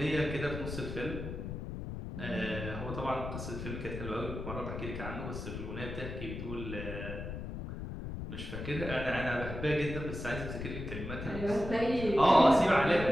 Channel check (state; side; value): noise; left; rumble, 7 dB below the sound